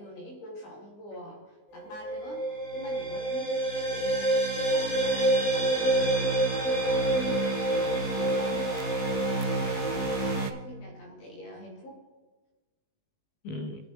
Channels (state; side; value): late; right; 19 ms